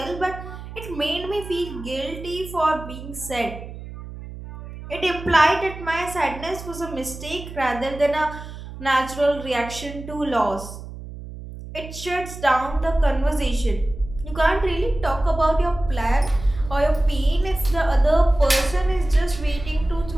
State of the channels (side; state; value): right; noise; hum, 12 dB below the sound